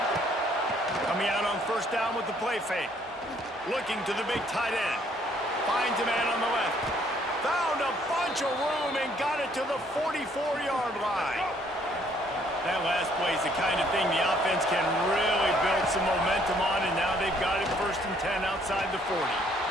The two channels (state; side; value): normal; both; correlation 0.64